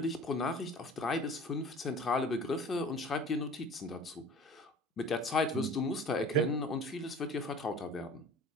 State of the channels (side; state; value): both; normal; correlation 0.43